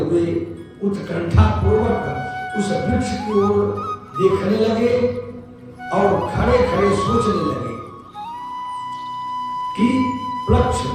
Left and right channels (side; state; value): both; identical; correlation 1.00